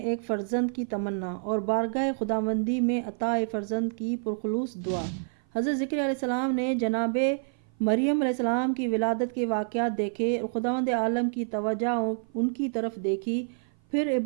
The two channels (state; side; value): silent; left; 56 dB below the other